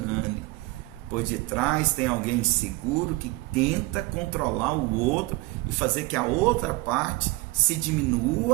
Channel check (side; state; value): left; quieter; 21.3 dB